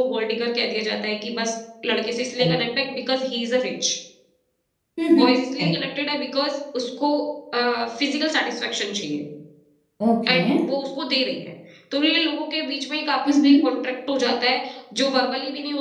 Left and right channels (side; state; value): both; identical; correlation 1.00